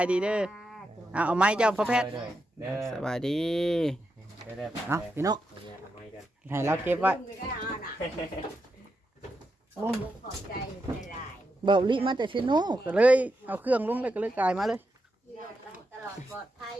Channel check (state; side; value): normal; both; correlation 0.85